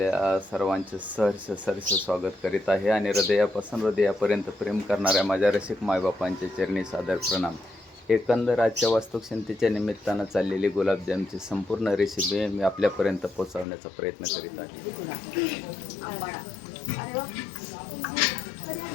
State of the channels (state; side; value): drops out; right; at 13.7 s